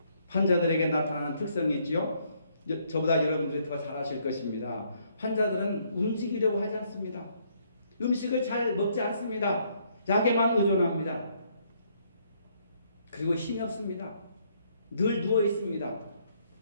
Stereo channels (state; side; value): inverted; both; correlation -0.69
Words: 환자들에게 나타나는 특성이 있지요. 저보다 여러분들이 더 잘 아실 것입니다. 환자들은 움직이려고 하지 않습니다. 음식을 잘 먹지 않습니다. 약에만 의존합니다. 그리고 힘이 없습니다. 늘 누워 있습니다.